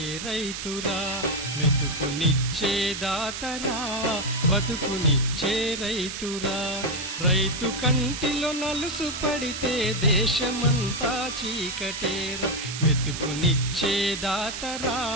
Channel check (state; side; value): noise; right; hiss, 7 dB below the sound